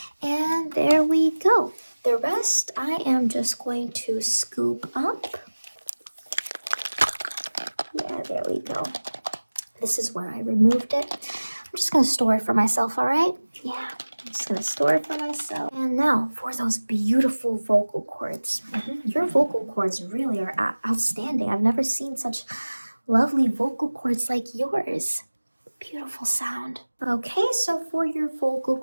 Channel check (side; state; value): both; inverted; correlation -1.00